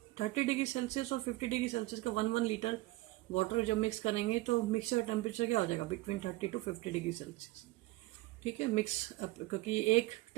30 degree Celsius और 50 degree Celsius का 1 litre water जब mix करेंगे तो mixer temperature क्या हो जाएगा, between 30 to 50 degree Celsius. ठीक है, मिक्स, क्योंकि एक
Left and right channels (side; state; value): left; quieter; 19.5 dB